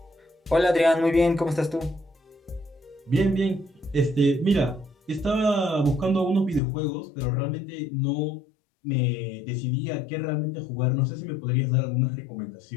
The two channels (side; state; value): right; drops out; at 6.6 s